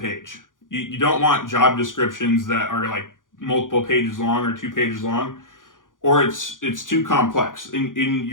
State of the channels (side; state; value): right; late; 0.89 ms